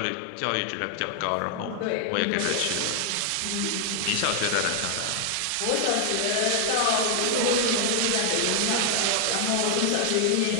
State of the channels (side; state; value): both; different; correlation 0.00